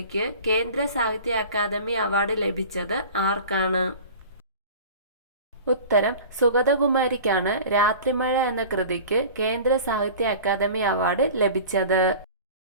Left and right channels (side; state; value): both; inverted; correlation -0.39